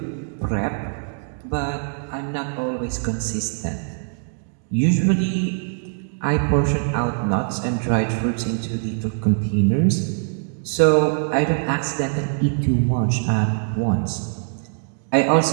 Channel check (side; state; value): left; silent; 64 dB below the other